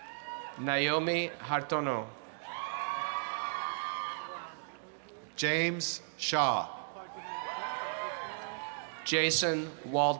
Naomi Hartono. James Shaw. Jason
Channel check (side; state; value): left; silent; digital silence